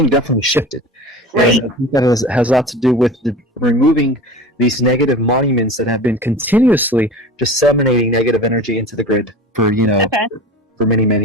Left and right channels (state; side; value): normal; both; correlation 0.34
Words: definitely shifted. Right. And I think that has a lot to do with removing these negative monuments that have been continuously disseminating negative energy into the grid for for many,